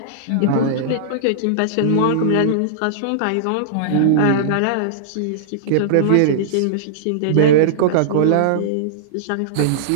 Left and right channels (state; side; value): different; both; correlation -0.02